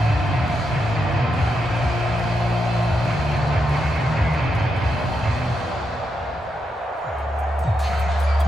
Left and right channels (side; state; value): both; normal; correlation 0.83